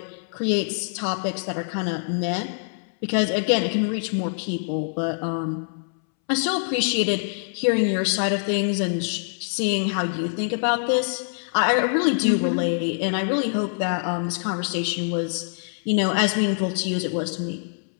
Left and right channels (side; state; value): right; silent; 62 dB below the other